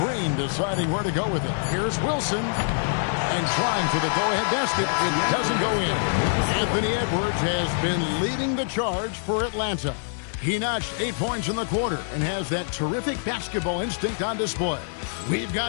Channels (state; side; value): silent; right; digital silence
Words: deciding where to go with it. Here's Wilson. And trying for the go-ahead basket. It doesn't go in. Anthony Edwards has been leading the charge for Atlanta. He notched 8 points in the quarter and has that terrific basketball instinct on display. We've